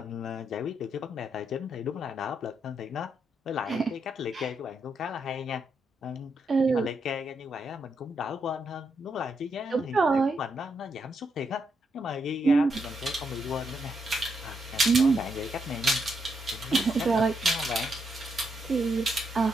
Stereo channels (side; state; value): both; normal; correlation 0.80